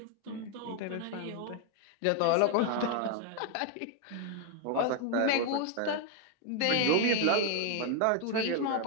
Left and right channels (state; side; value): different; both; correlation 0.00